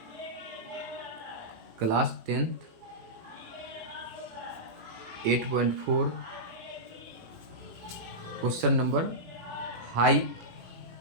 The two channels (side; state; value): left; late; 18 ms